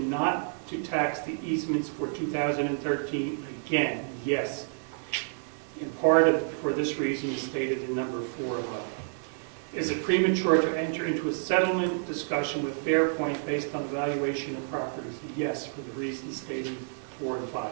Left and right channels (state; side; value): silent; left; digital silence